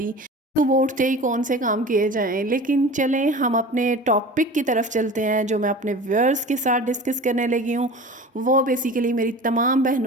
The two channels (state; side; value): normal; both; correlation 0.37